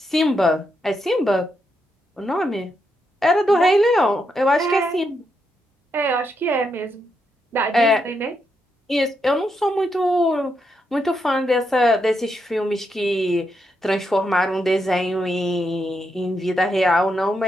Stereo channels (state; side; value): normal; both; correlation 0.82